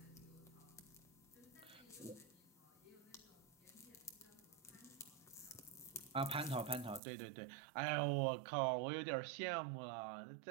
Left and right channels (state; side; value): drops out; left; at 7.0 s